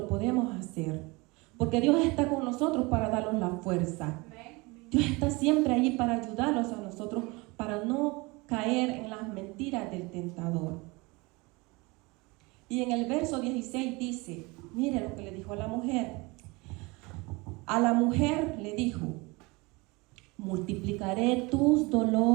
podemos hacer. Porque Dios está con nosotros para darnos la fuerza. Dios está siempre ahí para ayudarlos a nosotros, para no caer en las mentiras del tentador. Y en el verso 16 dice, mire lo que le dijo a la mujer. A la mujer le dijo: multiplicaré tus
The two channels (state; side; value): quieter; left; 25.3 dB